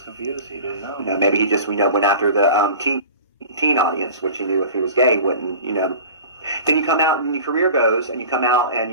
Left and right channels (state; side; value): inverted; both; correlation -0.38